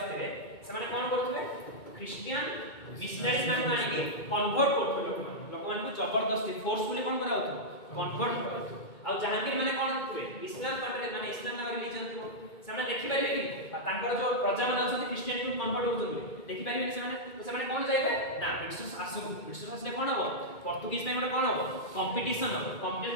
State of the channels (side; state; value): right; late; 2.2 ms